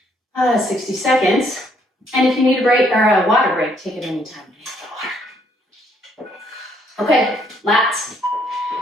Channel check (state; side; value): normal; both; correlation 0.69